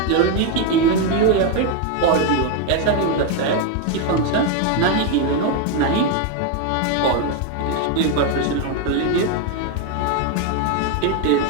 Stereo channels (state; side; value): different; both; correlation 0.01